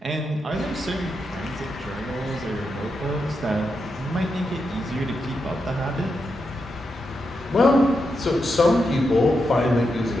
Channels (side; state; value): both; normal; correlation 0.86